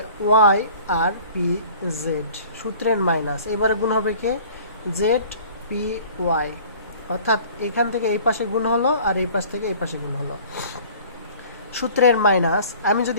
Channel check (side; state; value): both; inverted; correlation -0.48